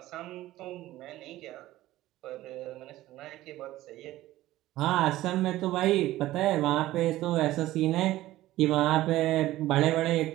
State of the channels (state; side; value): quieter; left; 15.8 dB